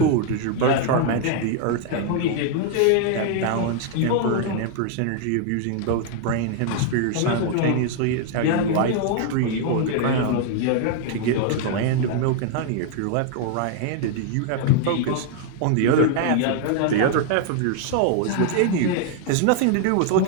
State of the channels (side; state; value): both; different; correlation 0.00